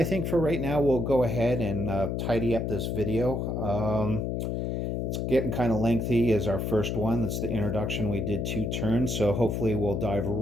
think for right now, we'll go ahead and tidy up this video. It's getting kind of lengthy as our first one. That's the introduction. We did 2 turns, so hopefully we'll dive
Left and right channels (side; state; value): left; noise; hum, 1 dB below the sound